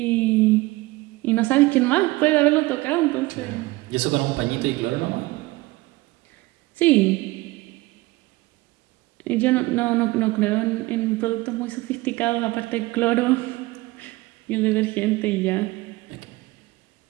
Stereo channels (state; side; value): quieter; left; 20.7 dB